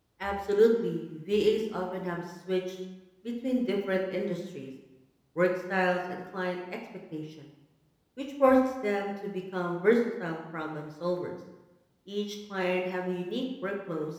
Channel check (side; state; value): both; identical; correlation 1.00